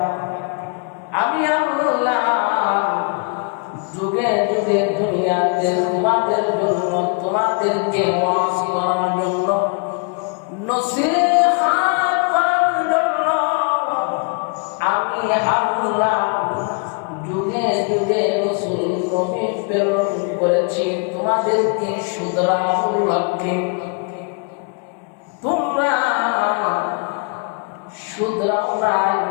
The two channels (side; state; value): right; quieter; 36.4 dB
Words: আমি আল্লাহ যুগে যুগে দুনিয়াতে তোমাদের জন্য, তোমাদেরকে ওয়াজ করার জন্য, নসিহত করার জন্য আমি আল্লাহ যুগে যুগে রাসূল নবী প্রেরণ করেছি তোমাদেরকে শুধরানোর লক্ষ্যে। তোমরা শুধরাও নাই,